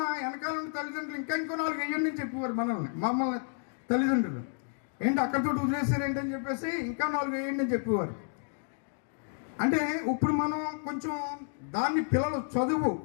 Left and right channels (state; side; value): silent; right; 57 dB below the other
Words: వెనకాల తల్లిదండ్రులు ఇంకా 4 వేయండి అని చెప్పేవారు మమ్మల్ని తల్లిదండ్రులు. ఏంటి అక్కడితో వదిలేశారు ఏంటని చెప్పేసి ఇంకా 4 వేయండి అని చెప్పేవారు. అంటే ఇప్పుడు మనం కొంచెం దాన్ని పిల్లలు